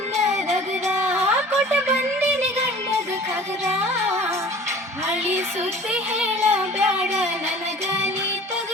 ದಗದ ಕೊಟ್ಟ ಬಂದಿನಿ ಗಂಡದ ಖಗದ ಹಳಿ ಸುದ್ದಿ ಹೇಳ ಬ್ಯಾಡ ನನಗ ನೀ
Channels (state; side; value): normal; both; correlation 0.45